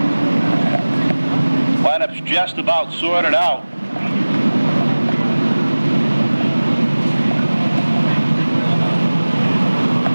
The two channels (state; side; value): inverted; both; correlation -1.00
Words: Lineup's just about sorted out.